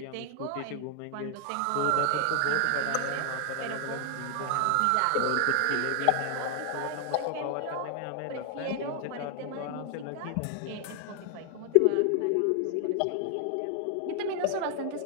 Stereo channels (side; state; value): both; different; correlation 0.00